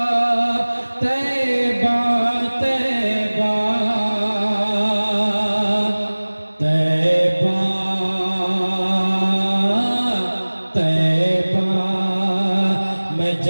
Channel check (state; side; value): inverted; both; correlation -1.00